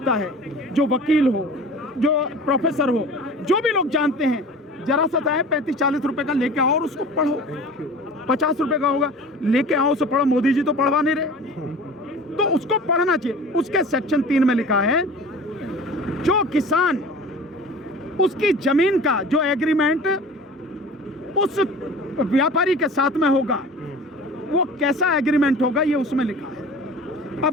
है, जो वकील हो, जो प्रोफेसर हो, जो भी लोग जानते हैं, जरा सा चाहे 35-40 रुपए का लेके आओ और उसको पढ़ो, 50 रुपए का होगा, लेके आओ उसे पढ़ो। मोदी जी तो पढ़वा नहीं रहे, तो उसको पढ़ना चाहिए। उसके सेक्शन 3 में लिखा है, जो किसान उसकी जमीन का जो एग्रीमेंट उस व्यापारी के साथ में होगा, वो कैसा एग्रीमेंट होगा, ये उसमें लिखा है।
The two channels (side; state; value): both; normal; correlation 0.40